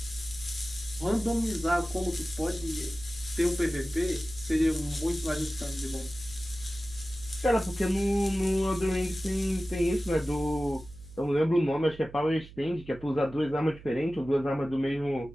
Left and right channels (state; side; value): noise; right; hum, 18 dB below the sound